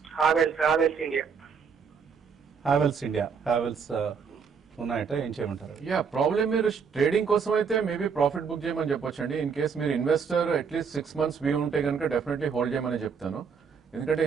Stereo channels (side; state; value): left; quieter; 6.1 dB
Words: హావెల్స్ ఇండియా. హ్యావెల్స్ ఉన్నాయట, ఏం చేయమంటారు? యా, ప్రాబ్లం మీరు ట్రేడింగ్ కోసం అయితే మేబీ ప్రాఫిట్ బుక్ చేయమని చెప్పొచ్చండి. ఇన్ కేస్ మీరు ఇన్వెస్టర్ అట్లీస్ట్ 6 months వ్యూ ఉంటే కనుక డెఫినెట్లీ హోల్డ్ చేయమని చెప్తాను. ఎందుకంటే